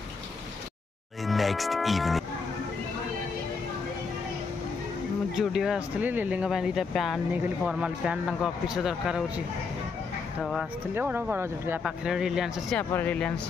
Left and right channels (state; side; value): quieter; right; 4.8 dB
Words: जुडियो आसती लिली दुटा पैंट नहीं गली फर्माल पैंट ऑफिस दरकार हो तो आसती बड़ बड़ जुडियो पाखे रिलायंस अच्छी आप